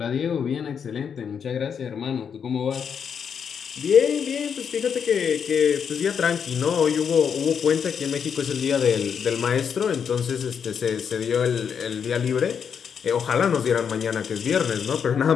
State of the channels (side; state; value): right; quieter; 7.2 dB